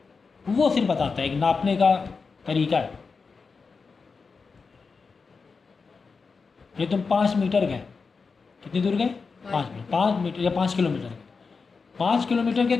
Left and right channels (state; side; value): quieter; right; 4.8 dB